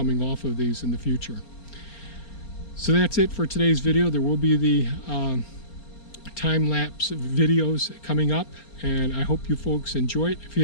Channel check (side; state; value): right; late; 4.3 ms